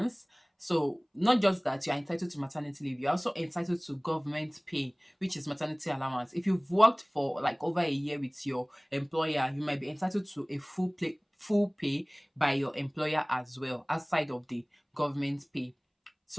So not just that you're entitled to maternity leave, you're also entitled to government pay, which is maternity allowance. If you've worked for like over a year with your employer, you might be entitled to a full pay by your employer as well, outside of the government pay.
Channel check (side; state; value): both; identical; correlation 1.00